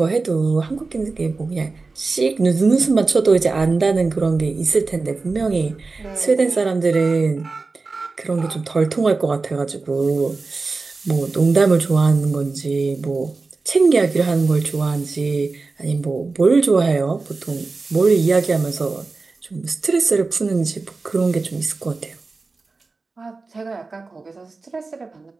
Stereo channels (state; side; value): quieter; left; 3.9 dB